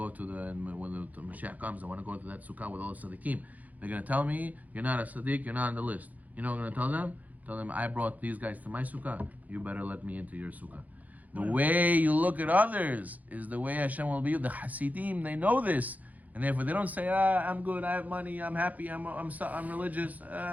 to when the Mashiach comes, I want to go to that sukkah with all the tzaddikim. They're going to tell me, you're not a tzaddik, you're not on the list. You know what I'm going to tell them? Tell them, I brought these guys to my sukkah, you better let me into your sukkah. The way you look at others is the way Hashem will be. The Hasidim, they know this. And therefore they don't say, I'm good, I have money, I'm happy, I'm religious,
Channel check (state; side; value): late; left; 0.078 ms